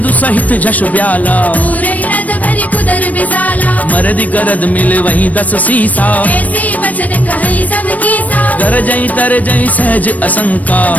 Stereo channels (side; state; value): right; late; 0.073 ms